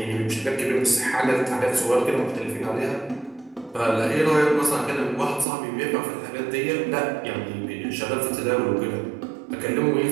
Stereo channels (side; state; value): left; drops out; at 5.5 s